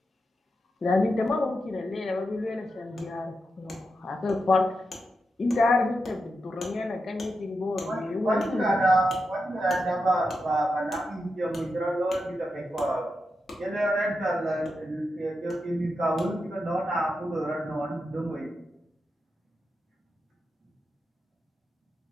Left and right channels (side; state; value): both; normal; correlation 0.87